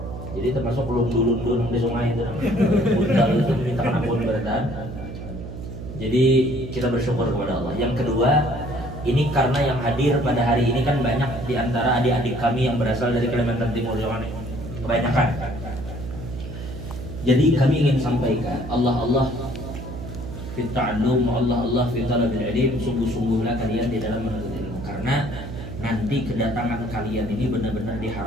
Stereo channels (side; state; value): right; noise; hum, 9 dB below the sound